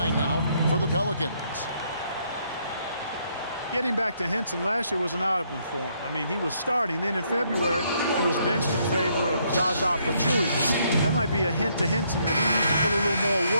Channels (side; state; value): both; inverted; correlation -0.71